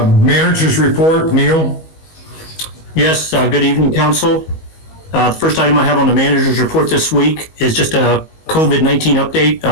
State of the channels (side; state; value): right; late; 19 ms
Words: report, Neil. Yes, good evening, council. The first item I have on the manager's report this week is just a COVID-19 update